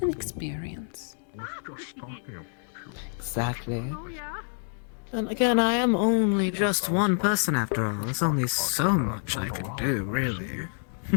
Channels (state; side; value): silent; right; 60 dB below the other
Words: and experience. Exactly. And again, I am only just one person after all. There's only so much I can do, really.